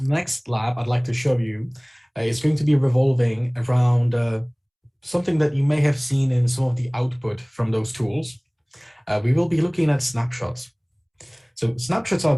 next lab I'd like to show you is going to be revolving around something that you may have seen in some of the output from those tools. We will be looking at snapshots. So snapshots are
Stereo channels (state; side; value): identical; both; correlation 1.00